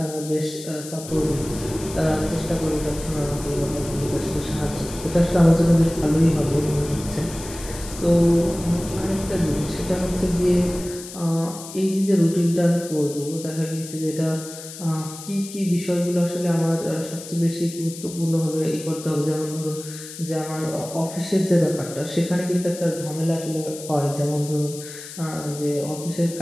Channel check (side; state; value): left; noise; hiss, 13 dB below the sound